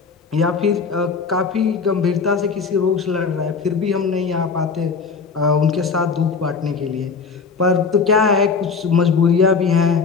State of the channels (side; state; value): right; quieter; 5.1 dB